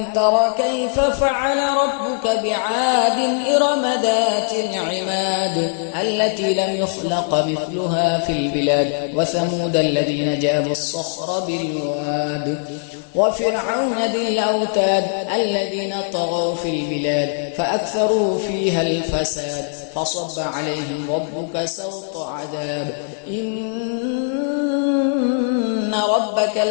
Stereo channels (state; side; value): silent; right; 57 dB below the other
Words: تر كيف فعل ربك بعاد إرم ذات العماد التي لم يخلق مثلها في البلاد وثمود الذين جابوا الصخر بالواد وفرعون ذي الأوتاد الذين طغوا في البلاد فأكثروا فيها الفساد فصب عليهم ربك سوط عذاب إن ربك